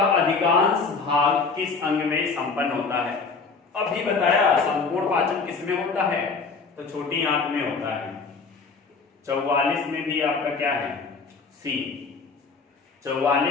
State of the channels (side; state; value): right; quieter; 4.6 dB